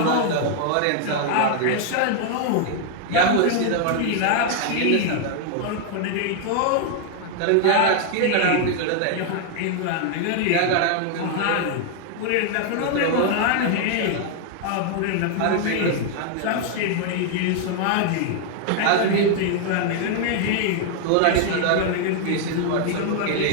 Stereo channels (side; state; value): both; different; correlation 0.00